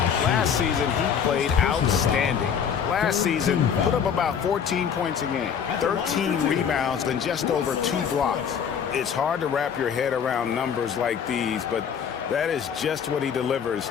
Last season, he played outstanding. Last season, put up about 14 points a game, 13 rebounds, and just over 2 blocks. It's hard to wrap your head around numbers like these, but that is just what he delivers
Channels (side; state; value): right; quieter; 7.5 dB